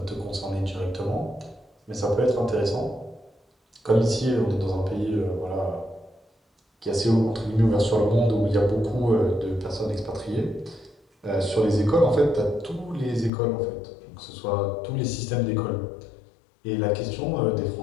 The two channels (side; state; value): right; drops out; at 13.3 s